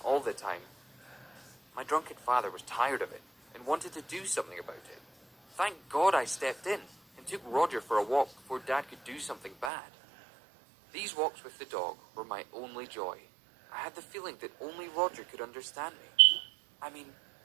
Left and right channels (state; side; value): drops out; left; at 9.7 s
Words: all the time. My drunken father was tired of it and wanted to do something about it. Thank God I stepped in and took Roger for a walk before Dad could do something bad. These walks with the dog were my only joy. I had the feeling that only Roger could understand me. I mean,